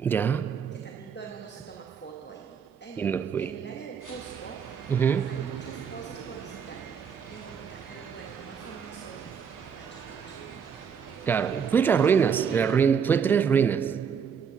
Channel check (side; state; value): left; quieter; 6.9 dB